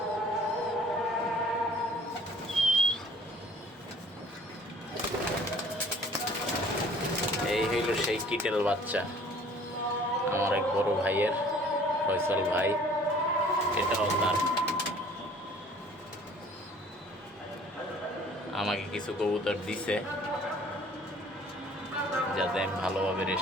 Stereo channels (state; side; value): normal; both; correlation 0.53